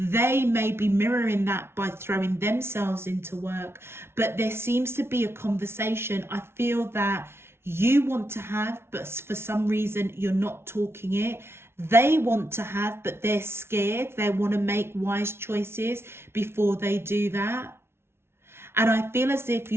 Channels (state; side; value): late; left; 0.12 ms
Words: may be mirroring that by throwing themselves into work. But there seems to be a conversation, I feel, that you want to have, but for some reason you're not talking it. They want to have, but they're scared. They want to make wise choices before they do that. And I feel as if